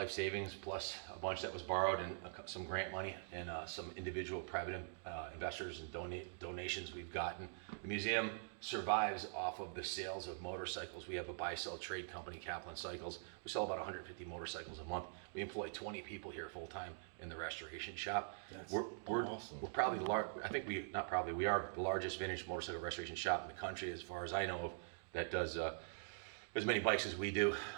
savings plus a bunch that was borrowed and some grant money and some individual private investors and donations we've gotten. The museum survives off of the sales of motorcycles. We have a buy-sell trade company, Kaplan Cycles. We sell about 150 motorcycles a month. We employ 20 people here full-time in the restoration shop. We're awesome. We're probably we are the largest vintage motorcycle restoration shop in the country, as far as I know of, that does as many bikes as we do.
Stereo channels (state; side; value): silent; left; digital silence